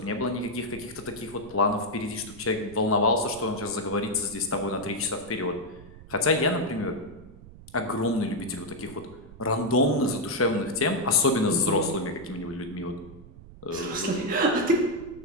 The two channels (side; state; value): right; noise; rumble, 19 dB below the sound